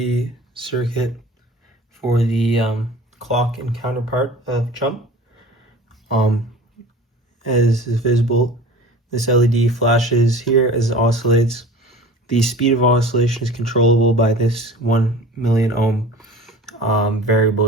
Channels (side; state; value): both; normal; correlation 0.40